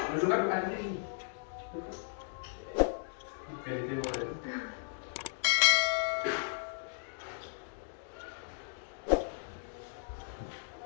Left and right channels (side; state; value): right; silent; digital silence